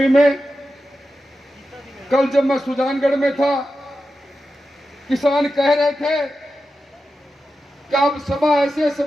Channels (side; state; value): both; normal; correlation 0.91